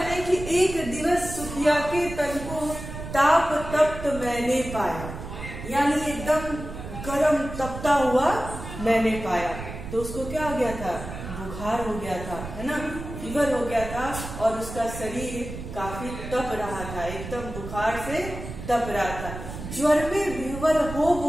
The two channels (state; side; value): noise; right; rumble, 10 dB below the sound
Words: हैं कि एक दिवस सुखिया के तन को ताप तप्त मैंने पाया, यानी एकदम गरम तपता हुआ मैंने पाया। तो उसको क्या हो गया था? बुखार हो गया था, है ना, फीवर हो गया था और उसका शरीर काफी तप रहा था, एकदम बुखार से तप रहा था। ज्वर में विह्वल हो